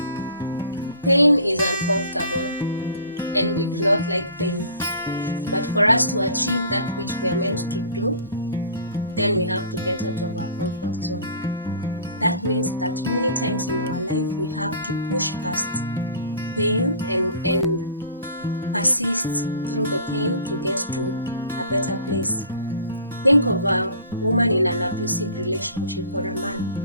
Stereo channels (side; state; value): both; inverted; correlation -0.45